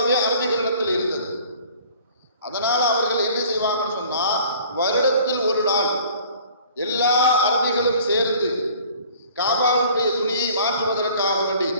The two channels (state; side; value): inverted; both; correlation -0.50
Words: அரபிகளிடத்தில் இருந்தது. அதனால் அவர்கள் என்ன செய்வாங்கன்னு சொன்னால், வருடத்தில் ஒரு நாள் எல்லா அரபிகளும் சேர்ந்து காபாவுடைய துணியை மாற்றுவதற்காக வேண்டி